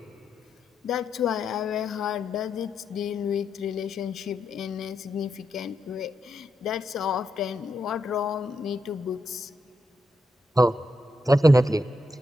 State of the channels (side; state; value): both; normal; correlation 0.83